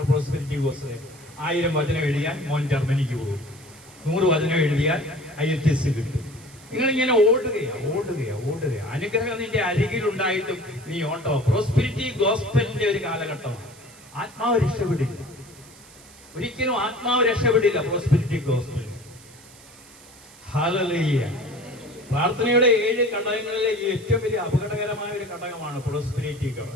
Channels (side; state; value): right; noise; hiss, 22 dB below the sound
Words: പ്രോസ്പെരിറ്റി ഗോസ്പൽ? 1000 വചനം എഴുതിയാൽ മോൻ ജർമ്മനിക്ക് പോകും, 100 വചനം എഴുതിയാൽ IELTS കിട്ടും. നിങ്ങളിങ്ങനെ ഓടുകയാ. അനുഗ്രഹം നിന്റെ അരികിലുണ്ടായിട്ടും നീ ഓട്ടോ. പ്രോസ്പെരിറ്റി ഗോസ്പലിന്റെ ഒരു കാലഘട്ടമാണ്. ആത്മാവ് രക്ഷപ്പെടില്ല, ഒരിക്കലും ആത്മാവ് രക്ഷപ്പെടില്ല പ്രോസ്പെരിറ്റി ഗോസ്പൽ. ഹല്ലേലൂയ. പ്രാർത്ഥനയുടെ 7 ഘടകങ്ങളിലെ ഏറ്റവും വലിയ അപകടകരമായ ഒരു ഘടകമാണ് പ്രോസ്പെരിറ്റി